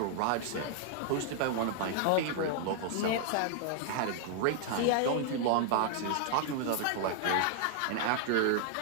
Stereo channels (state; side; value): different; both; correlation 0.00